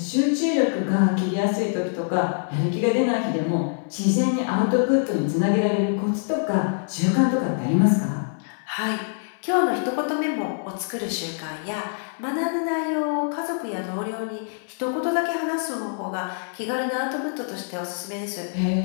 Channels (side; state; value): right; silent; 62 dB below the other